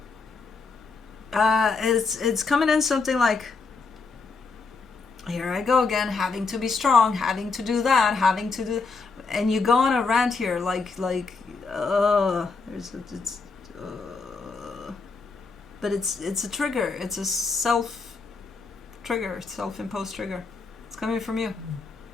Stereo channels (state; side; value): quieter; right; 4.3 dB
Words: It's coming in something like, here I go again, having to be strong, having to do that, having to do, and you go on a rant here but it's a trigger. It's a self-trigger, self-imposed trigger. It's coming from you.